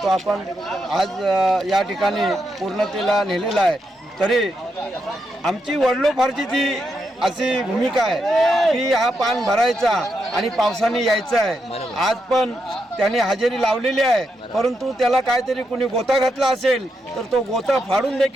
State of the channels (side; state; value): both; normal; correlation 0.82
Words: तो आपण आज या ठिकाणी पूर्णतेला नेलेला आहे. तरी आमची वडिलोपार्जित ती अशी भूमिका आहे की हा पान भरायचा आणि पावसाने यायचं आहे. आज पण त्याने हजेरी लावलेली आहे, परंतु त्याला काहीतरी कुणी गोता घातला असेल तर तो गोता फाडून